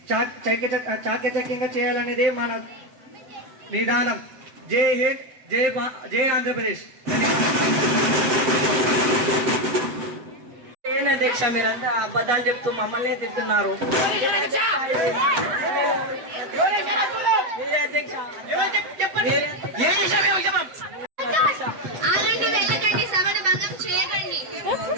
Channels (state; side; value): late; left; 7.8 ms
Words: చాకచక్యంగా చేయాలనేది మన విధానం. జై హింద్, జై ఆంధ్రప్రదేశ్. ఏంటి అధ్యక్ష, మీరంతా అబద్ధాలు చెప్తూ మమ్మల్ని తింటున్నారు. మీరే అధ్యక్ష. సభను భంగం చేయకండి.